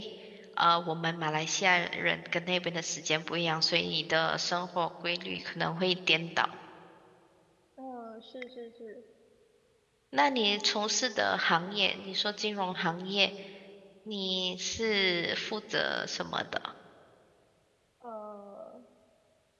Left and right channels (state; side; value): identical; both; correlation 1.00